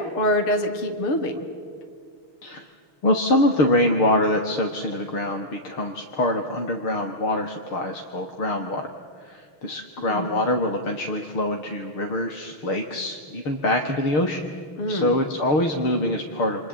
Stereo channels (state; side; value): late; right; 6.6 ms